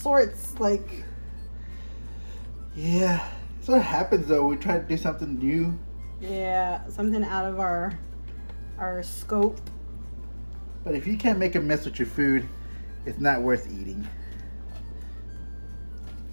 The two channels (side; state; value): both; inverted; correlation -1.00